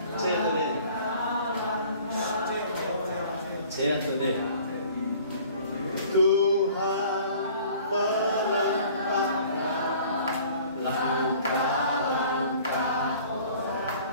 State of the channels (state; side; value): inverted; both; correlation -0.50